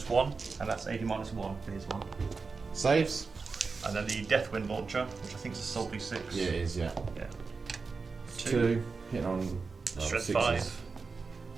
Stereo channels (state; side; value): quieter; left; 4.5 dB